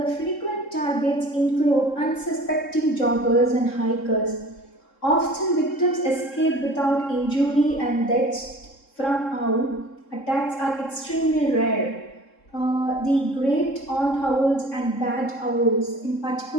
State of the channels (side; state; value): right; late; 3.7 ms